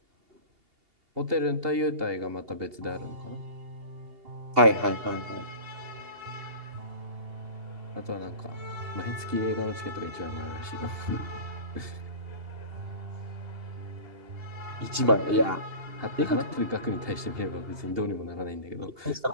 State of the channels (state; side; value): late; left; 2.8 ms